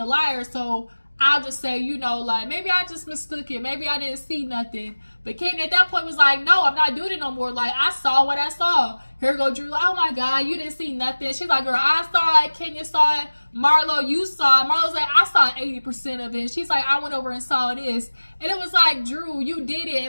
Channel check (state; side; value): inverted; both; correlation -1.00